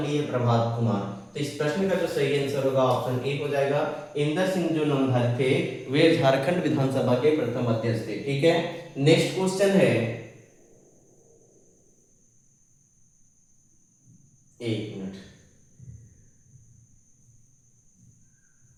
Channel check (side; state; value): both; identical; correlation 1.00